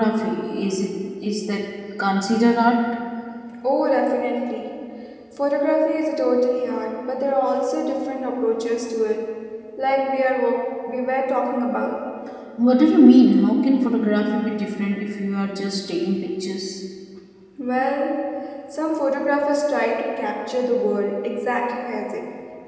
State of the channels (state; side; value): identical; both; correlation 1.00